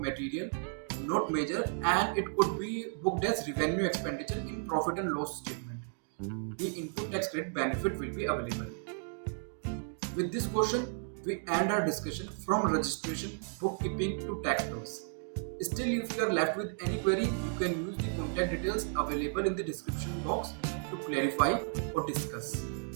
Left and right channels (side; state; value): left; silent; 55 dB below the other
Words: material, not major, and it could be booked as revenue expenditure in profit and loss statement, the input tax credit benefit will be available. With this question, we end our discussion from registration, bookkeeping to tax laws. Still, if you are left with any query, you can use the contact details available in the description box to clarify or discuss.